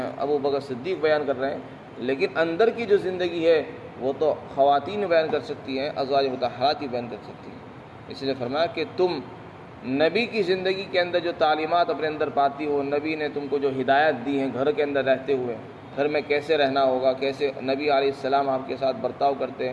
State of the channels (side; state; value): both; identical; correlation 1.00